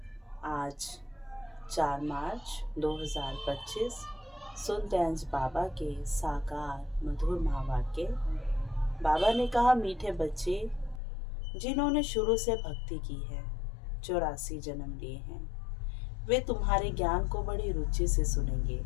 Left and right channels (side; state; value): right; drops out; at 11.0 s